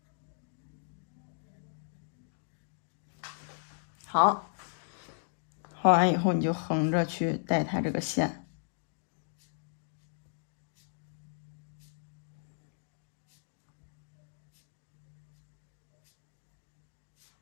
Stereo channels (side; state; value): right; silent; digital silence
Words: 好，画完以后你就横着去带它这个线。